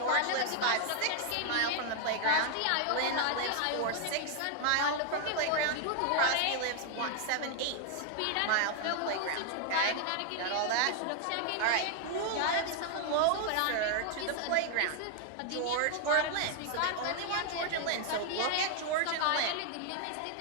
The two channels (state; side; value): different; both; correlation 0.00